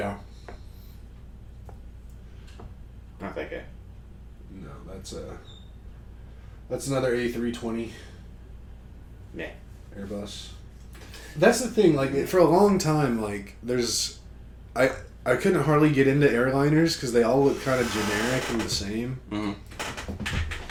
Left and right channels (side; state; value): both; identical; correlation 1.00